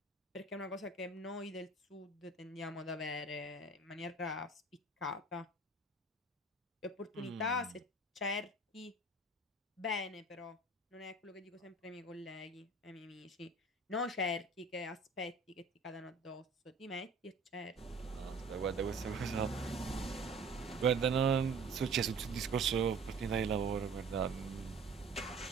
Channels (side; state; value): left; quieter; 3.2 dB